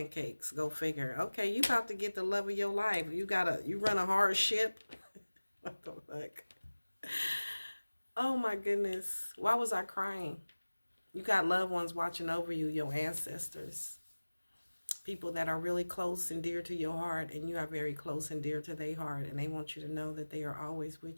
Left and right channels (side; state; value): both; inverted; correlation -1.00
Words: Go figure. Okay, you about to get the love of your life. You run a hard ship. What the fuck? Oh my goodness. Why was I crying? You got loved ones watching over you, your ancestors. People that are really close and dear to your heart, and you are very close and dear to their heart, and they want you to know that they are always